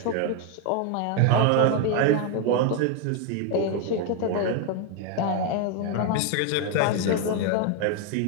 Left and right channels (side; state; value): both; different; correlation 0.01